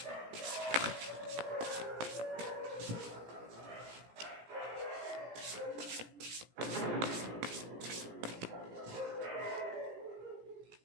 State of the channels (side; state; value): left; late; 17 ms